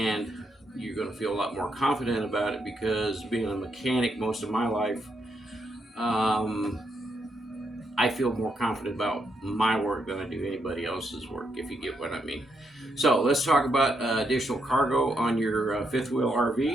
you're going to feel a lot more confident about it because being a mechanic most of my life, I feel more confident about my work than I do anybody else's work, if you get what I mean. So let's talk about additional cargo on your fifth wheel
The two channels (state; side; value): normal; both; correlation 0.79